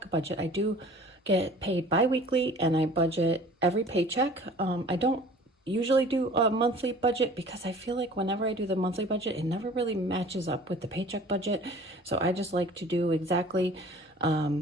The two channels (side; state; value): both; normal; correlation 0.47